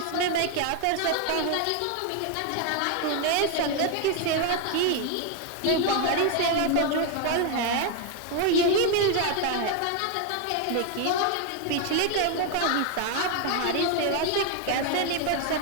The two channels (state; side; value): different; both; correlation 0.01